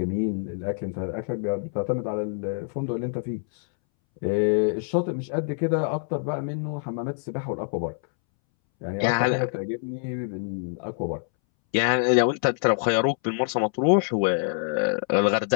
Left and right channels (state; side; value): silent; right; 61 dB below the other